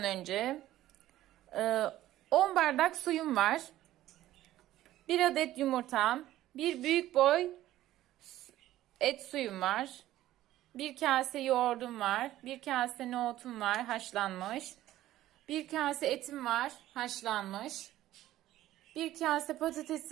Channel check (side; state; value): left; quieter; 14.3 dB